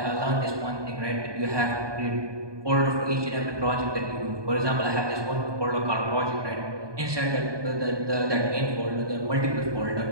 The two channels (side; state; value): left; late; 1.2 ms